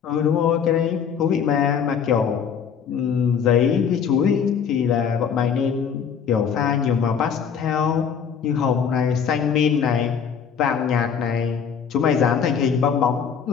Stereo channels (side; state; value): right; quieter; 7.2 dB